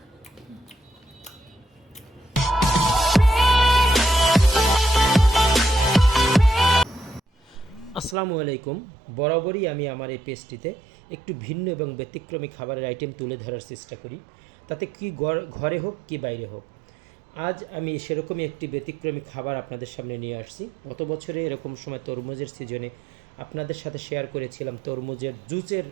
আলাইকুম। বরাবরই আমি আমার এই পেজটিতে একটু ভিন্ন এবং ব্যতিক্রমী খাবারের আইটেম তুলে ধরার চেষ্টা করি, তাতে কি ঘরে হোক কি বাইরে হোক। আজ আমি সেরকমই একটি ব্যতিক্রমী খাবার আপনাদের সামনে নিয়ে আসছি। গত বছরে এরকম সময় তরমুজের সিজনে আপনাদের সাথে শেয়ার করেছিলাম তরমুজের জুসের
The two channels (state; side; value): drops out; left; at 8.2 s